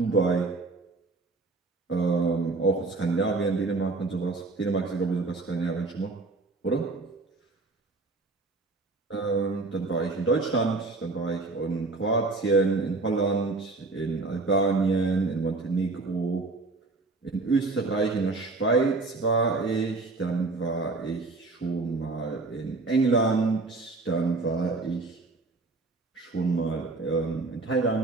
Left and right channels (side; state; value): left; quieter; 3.5 dB